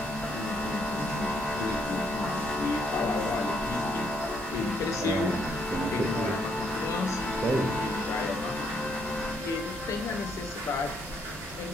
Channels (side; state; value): both; normal; correlation 0.72